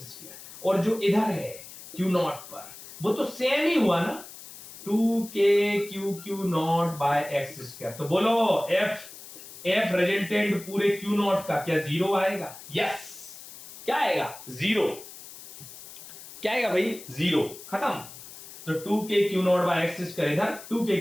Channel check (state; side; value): noise; left; hiss, 16 dB below the sound